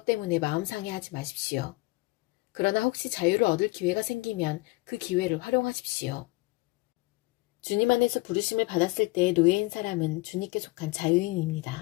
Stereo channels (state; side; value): quieter; right; 23.5 dB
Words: 때문에 마음 상해하지 마십시오. 그러나 혹시 자유를 얻을 기회가 생기면 그 기회를 활용하십시오. 주님 안에서 부르심을 받았을 때의 노예인 사람은 주님께 속한